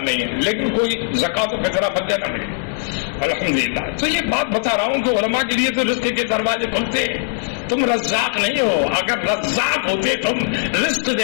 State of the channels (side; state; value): right; silent; digital silence